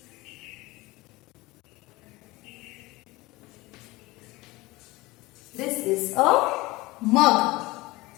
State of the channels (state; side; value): quieter; right; 21.1 dB